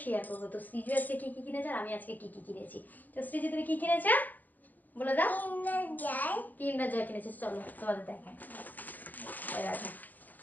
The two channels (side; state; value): right; late; 0.083 ms